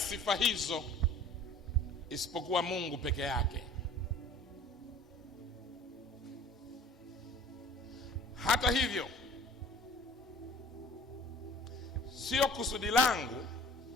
hizo isipokuwa Mungu peke yake. Hata hivyo, sio kusudi langu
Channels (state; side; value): normal; both; correlation 0.46